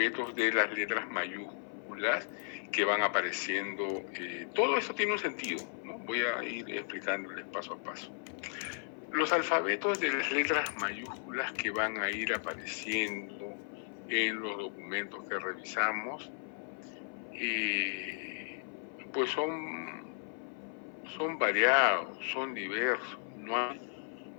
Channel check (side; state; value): right; silent; 54 dB below the other